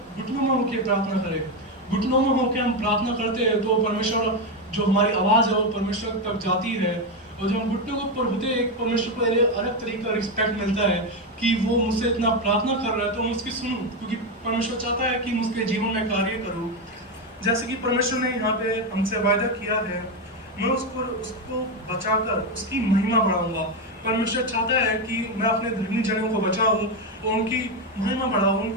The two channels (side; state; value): both; normal; correlation 0.09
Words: घुटनों में होकर प्रार्थना करें। घुटनों में होकर हम प्रार्थना करते हैं तो परमेश्वर, जो हमारी आवाज़ है वो परमेश्वर तक जाती है। और जब हम घुटनों के ऊपर होते हैं, परमेश्वर को एक अलग तरीके का रिस्पेक्ट मिलता है कि वो मुझसे इतना प्रार्थना कर रहा है तो मैं उसकी सुनूं, क्योंकि परमेश्वर चाहता है कि मैं उसके जीवन में कार्य करूं। जैसे कि परमेश्वर ने यहाँ पे हमसे वायदा किया है, मैं उसको बचाकर उसकी महिमा बढ़ाऊंगा। परमेश्वर चाहता है कि मैं अपने धर्मी जनों को बचाऊं और उनकी महिमा बढ़ाऊं,